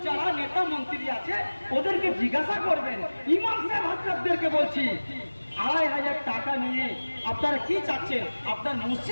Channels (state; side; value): inverted; both; correlation -1.00